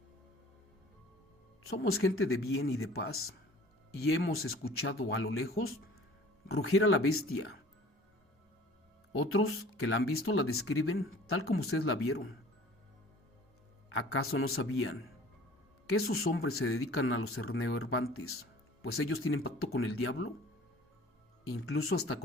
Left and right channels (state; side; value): normal; both; correlation 0.48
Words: Somos gente de bien y de paz, y hemos escuchado a lo lejos rugir a la bestia. Otros que la han visto la describen tal como ustedes la vieron. ¿Acaso no sabían que esos hombres se dedican a los neoerbantes, pues ellos tienen pacto con el diablo, incluso hasta